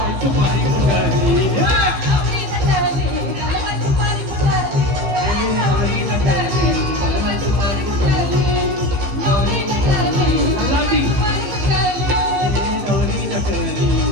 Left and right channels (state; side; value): late; left; 15 ms